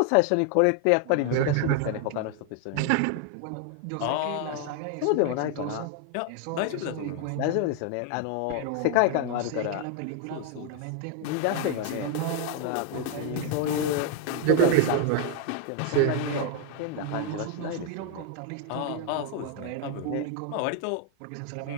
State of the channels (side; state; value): both; different; correlation 0.00